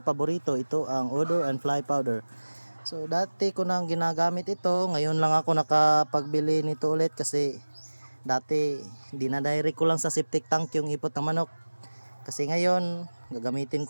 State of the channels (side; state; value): both; inverted; correlation -1.00